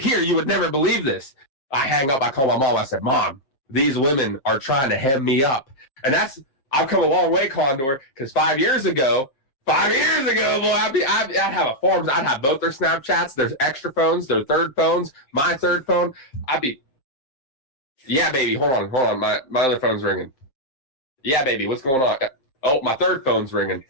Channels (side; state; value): right; late; 7.6 ms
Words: You would never believe this. I hang up. I call my mom. I said, Mom, these women are trying to hem me up. And I've come a long way, Condor, because 5 years ago, boy, I'd have a form. I'd have both their Snapchats, their extra phones, their third phones, my third phone. Yeah, baby, hold on. My other phone's ringing. Yeah, baby, what's going on? Oh, my third phone's ringing.